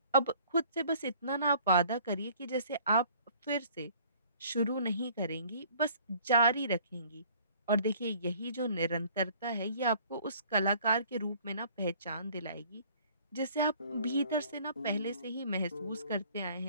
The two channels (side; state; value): both; inverted; correlation -0.55